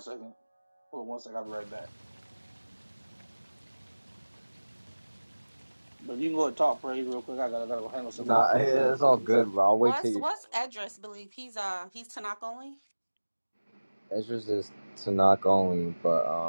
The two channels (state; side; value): inverted; both; correlation -1.00